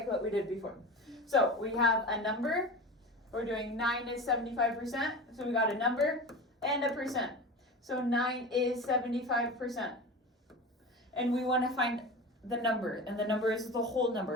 what we did before. So we have a number. We're doing 9 is 75%. So we got a number and a percent. So 9 is 75%. and we want to find the number, and the number is the whole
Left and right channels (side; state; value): both; normal; correlation 0.30